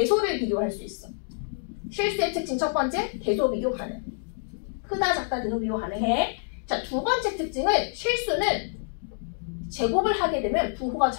비교할 수 있어. 실수의 특징 첫 번째, 대소 비교 가능. 크다, 작다, 대소 비교 가능해. 자, 두 번째 특징은 실수는 제곱을 하게 되면 부호가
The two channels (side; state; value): right; silent; digital silence